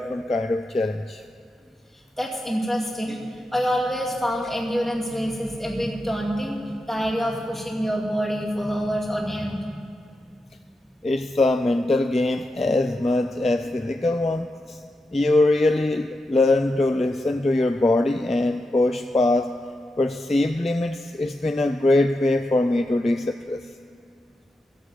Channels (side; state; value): both; normal; correlation 0.88